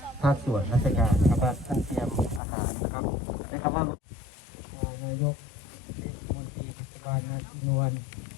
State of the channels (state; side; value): drops out; right; at 2.4 s